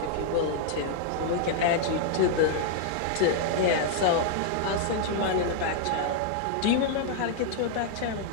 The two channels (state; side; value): different; both; correlation -0.01